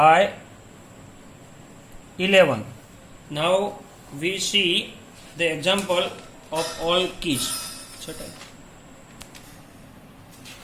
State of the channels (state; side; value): identical; both; correlation 1.00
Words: 11. Now we see the example of all keys.